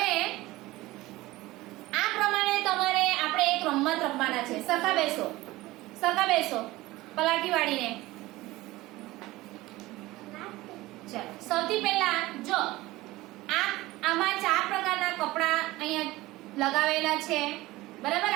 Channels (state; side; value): quieter; left; 18.7 dB